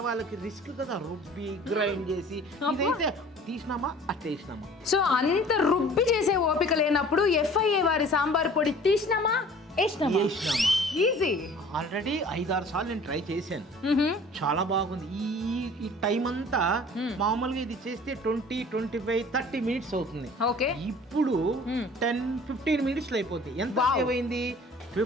రిస్క్ కదా, రుబ్బి గ్రైండ్ చేసి ఇదైతే తీసినామా అట్టేసినామా. సో అంత రుబ్బి చేసే ఓపిక లేనప్పుడు ఎఫ్ఐఏ వారి సాంబార్ పొడి తీసినామా వేసినామా. ఈజీ. ఆల్రెడీ 5-6 సార్లు నేను ట్రై చేశాను, చాలా బాగుంది. ఈ టైం అంతా మామూలుగా ఇది చేస్తే 20-25-30 మినిట్స్ అవుతుంది. ఓకే, ఇప్పుడు 10-15 మినిట్స్ లో అయిపోతుంది. ఎంత సేవ్ అయింది?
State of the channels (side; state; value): both; normal; correlation 0.48